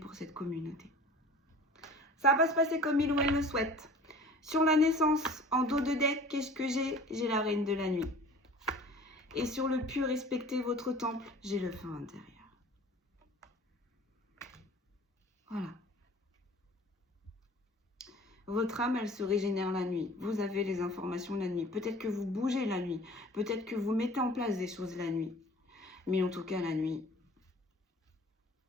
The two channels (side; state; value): both; normal; correlation 0.45